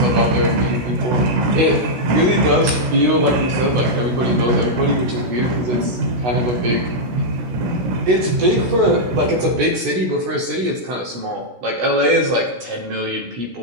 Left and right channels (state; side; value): late; left; 16 ms